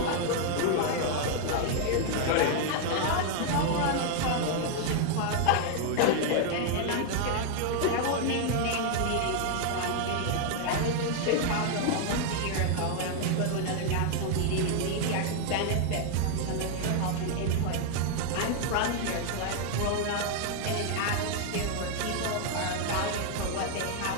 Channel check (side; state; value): both; different; correlation 0.00